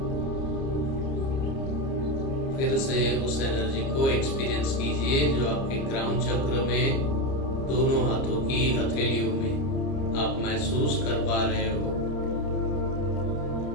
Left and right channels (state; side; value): late; right; 30 ms